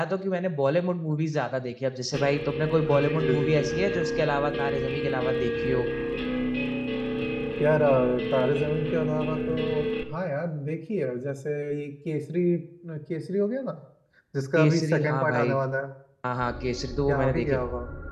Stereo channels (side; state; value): both; identical; correlation 1.00